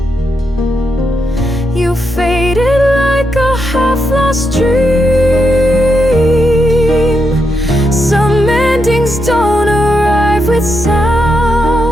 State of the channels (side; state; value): both; normal; correlation 0.83